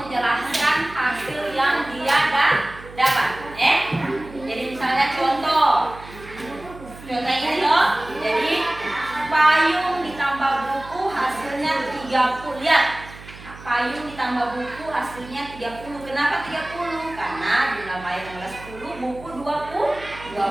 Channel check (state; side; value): noise; right; hum, 17 dB below the sound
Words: hasil yang dia dapat. Jadi misalnya contoh ini loh. Jadi payung ditambah buku hasilnya 30. Lihat. Payung ditambah buku hasilnya 30. Kenapa 30? Karena jumlah payung adalah 10, buku